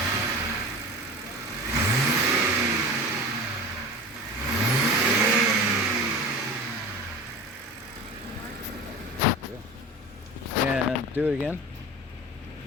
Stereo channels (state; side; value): normal; both; correlation 0.34